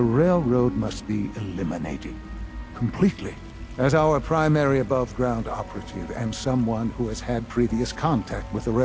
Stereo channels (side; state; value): both; identical; correlation 1.00